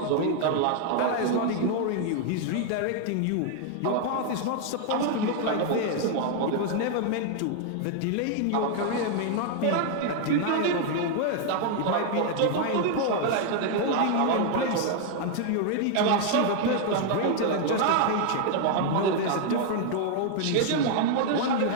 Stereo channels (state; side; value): different; both; correlation 0.00